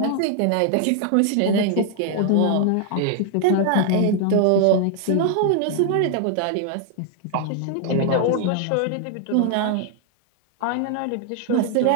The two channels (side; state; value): both; different; correlation 0.00